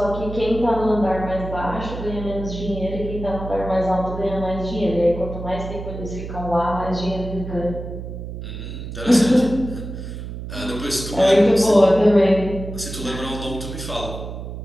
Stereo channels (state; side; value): noise; right; hum, 8 dB below the sound